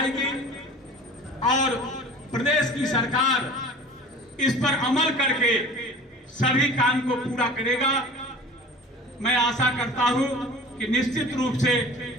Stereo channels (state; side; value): normal; both; correlation 0.40